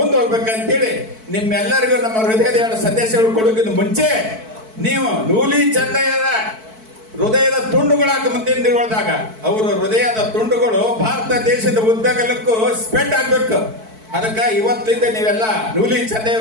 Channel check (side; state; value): left; late; 4.6 ms